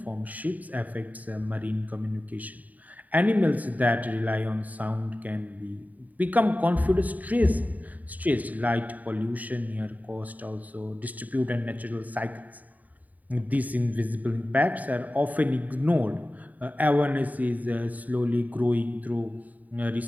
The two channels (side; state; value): left; late; 0.076 ms